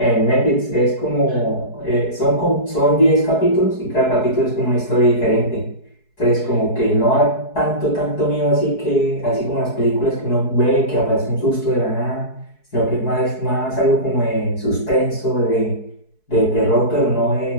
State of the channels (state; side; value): late; right; 4.7 ms